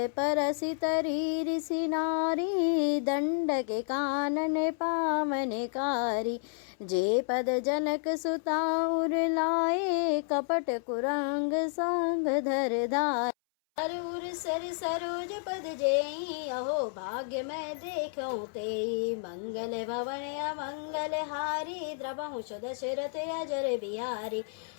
परसि तरी ऋषि नारी, दंडक कानन पावनकारी। जे पद जनक सुता उर लाए, कपट कुरंग संग धर धाय। उर सर सरोज पद जेई, अहो भाग्य मैं देखूं तेई। मंगल भवन अमंगल हारी, द्रवहु सुदशरथ अजर बिहारी।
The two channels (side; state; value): right; silent; 57 dB below the other